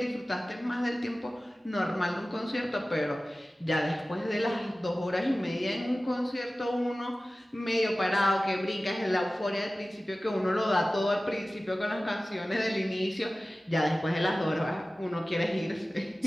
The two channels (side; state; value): both; normal; correlation 0.96